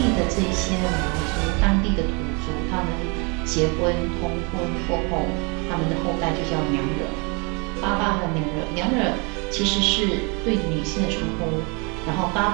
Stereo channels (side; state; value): left; quieter; 31.8 dB